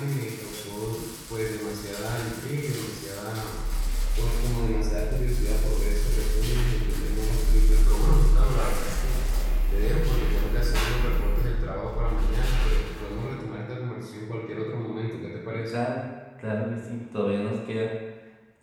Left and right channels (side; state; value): both; identical; correlation 1.00